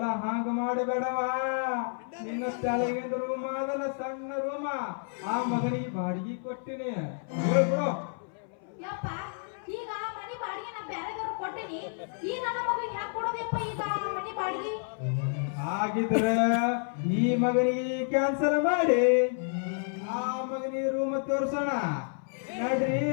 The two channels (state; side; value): silent; right; 58 dB below the other